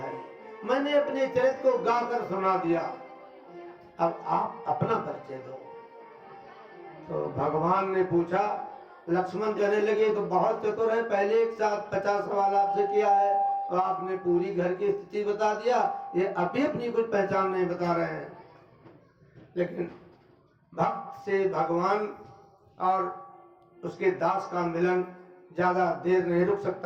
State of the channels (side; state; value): both; identical; correlation 1.00